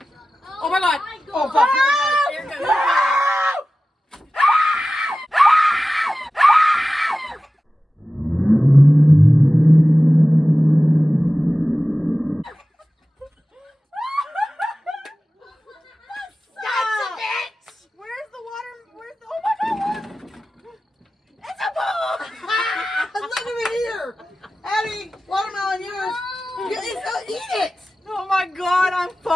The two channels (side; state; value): both; normal; correlation 0.95